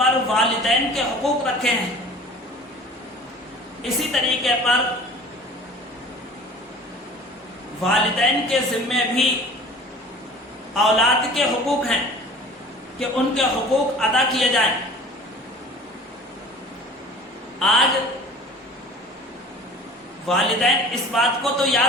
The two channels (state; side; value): normal; both; correlation 0.44